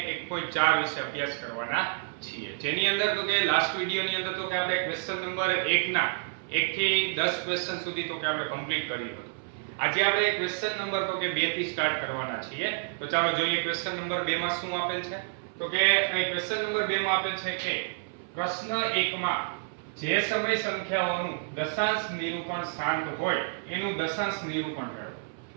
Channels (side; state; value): left; silent; 58 dB below the other